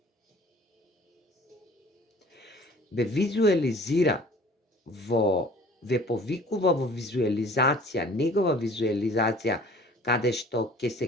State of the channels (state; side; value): normal; both; correlation 0.49